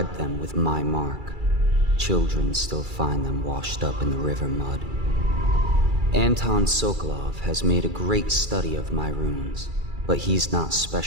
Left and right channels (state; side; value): late; left; 2.3 ms